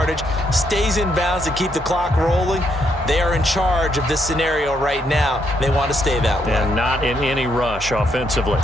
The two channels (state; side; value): normal; both; correlation 0.75